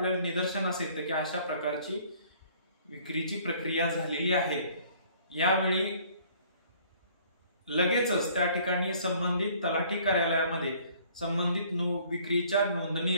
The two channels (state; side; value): inverted; both; correlation -0.57